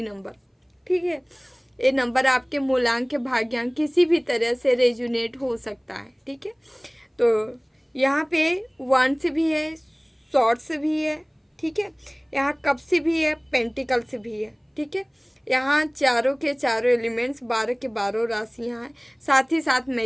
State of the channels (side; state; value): both; identical; correlation 1.00